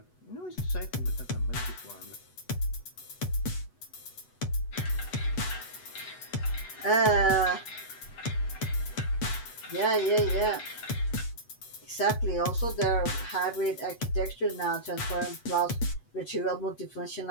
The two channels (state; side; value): late; right; 8.1 ms